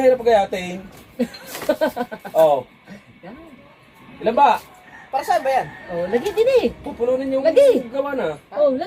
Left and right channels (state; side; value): identical; both; correlation 1.00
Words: pagkayatin. Oh. Ilan ba? Para saan ba yan? Oh, lagyan din eh. Pupulunin yung Lagi. gawa na. Oh,